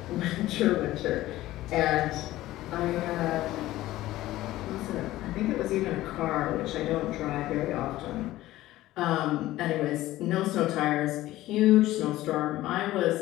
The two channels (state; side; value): quieter; right; 15.9 dB